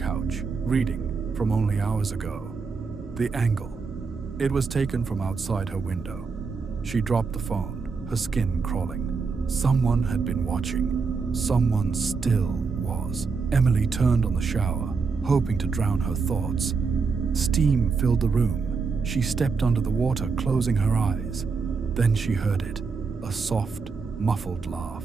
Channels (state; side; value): quieter; left; 4.9 dB